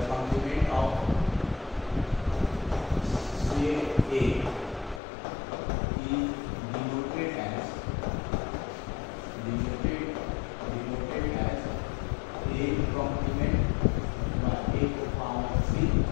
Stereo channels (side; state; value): right; drops out; at 5.0 s